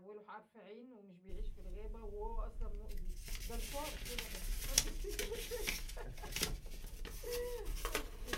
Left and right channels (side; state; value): both; identical; correlation 1.00